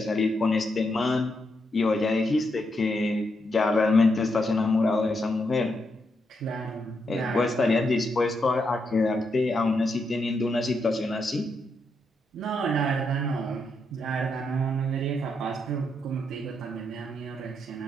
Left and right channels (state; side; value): normal; both; correlation 0.81